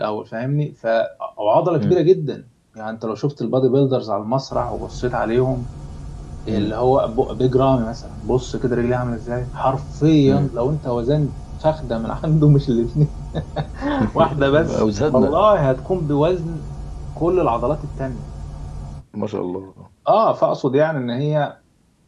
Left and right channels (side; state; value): both; identical; correlation 1.00